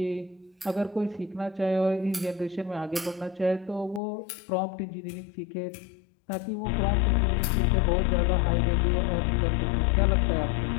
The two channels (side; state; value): right; drops out; at 4.0 s